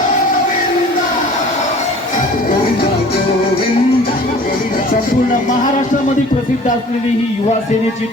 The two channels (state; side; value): normal; both; correlation 0.47